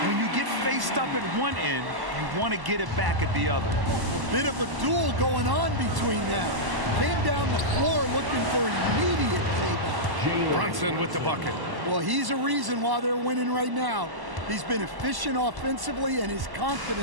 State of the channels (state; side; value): late; left; 1.1 ms